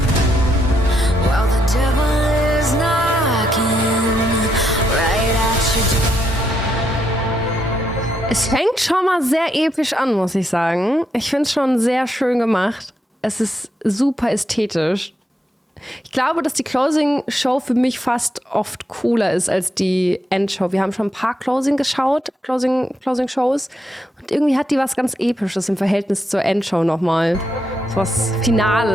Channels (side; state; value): both; normal; correlation 0.79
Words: while the devil is knocking right at your door. Es fängt schon mal sehr episch an, muss ich sagen. Ich finde es schon sehr schön gemacht. Es ist super ästhetisch. Ich glaube, dass die Closing-Show für mich fast oft cooler ist als die Endshow. Wir haben schon ein paar Closing-Shows. Und irgendwie hat die was ganz Episches im Verhältnis zur Endshow nochmal. So was